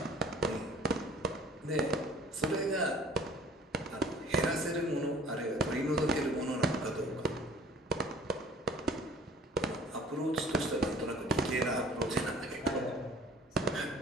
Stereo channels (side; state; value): both; normal; correlation 0.50